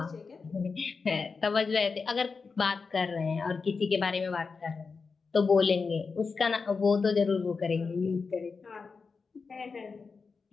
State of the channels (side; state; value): right; quieter; 4.8 dB